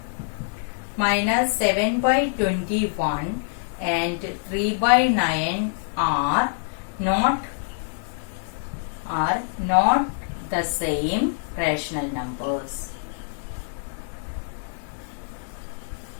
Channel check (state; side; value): silent; right; 61 dB below the other